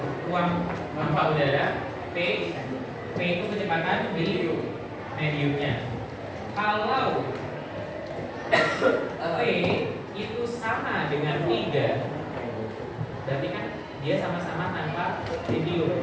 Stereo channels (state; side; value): identical; both; correlation 1.00